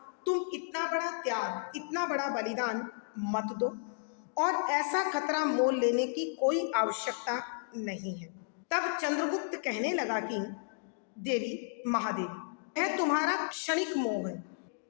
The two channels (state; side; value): silent; right; digital silence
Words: तुम इतना बड़ा त्याग, इतना बड़ा बलिदान मत दो और ऐसा खतरा मोल लेने की कोई आवश्यकता नहीं है। तब चंद्रगुप्त कहने लगा कि देवी, महादेवी, यह तुम्हारा क्षणिक मोह है।